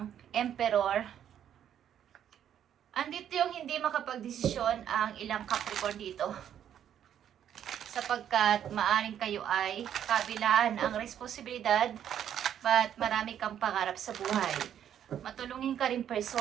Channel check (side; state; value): left; quieter; 9.8 dB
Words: Emperor. Andito yung hindi makapagdesisyon ang ilang Capricorn dito. Sapagkat maaring kayo ay kabilaan ang responsibilidad but marami kang pangarap sa buhay. Matulungin ka rin